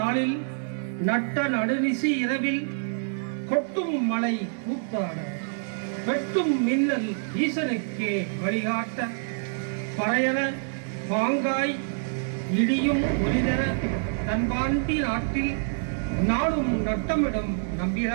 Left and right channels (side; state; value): left; silent; digital silence